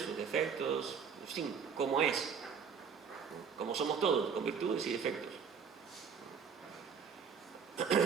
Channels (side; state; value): left; quieter; 6.4 dB